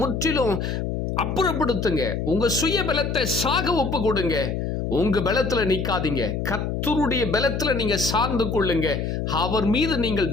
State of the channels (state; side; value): noise; left; hum, 2 dB below the sound